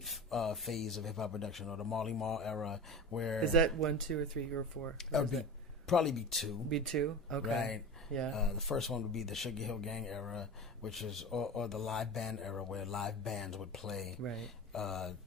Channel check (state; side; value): normal; both; correlation 0.30